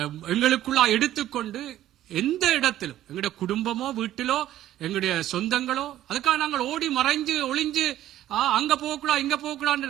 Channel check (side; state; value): left; quieter; 13.1 dB